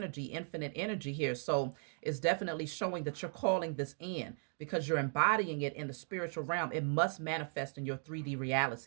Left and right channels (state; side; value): silent; left; 53 dB below the other